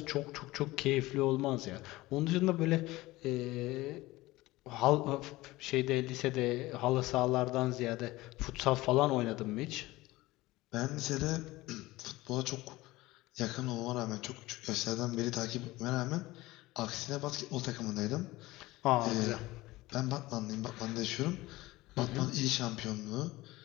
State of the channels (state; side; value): quieter; right; 19.1 dB